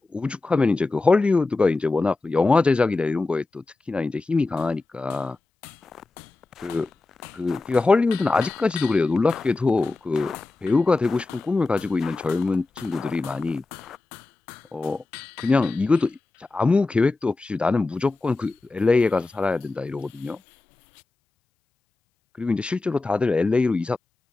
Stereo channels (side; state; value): right; quieter; 3.4 dB